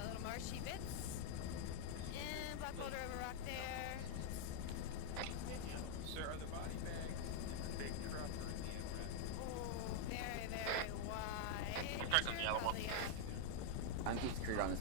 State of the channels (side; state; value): both; different; correlation 0.00